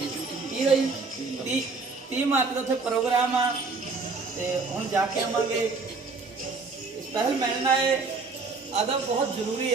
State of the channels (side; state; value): left; quieter; 4.1 dB